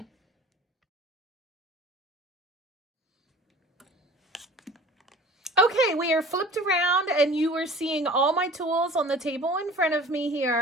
Okay, we are flipped around and you are seeing all my tools on the table in front of me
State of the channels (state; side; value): normal; both; correlation 0.44